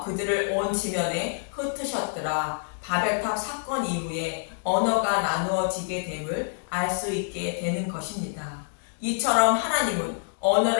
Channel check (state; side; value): silent; right; digital silence